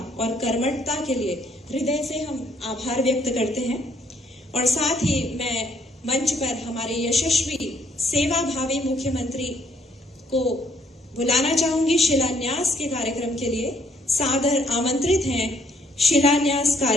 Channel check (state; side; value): normal; both; correlation 0.68